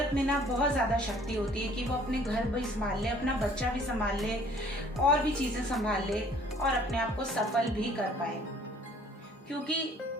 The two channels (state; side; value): normal; both; correlation 0.56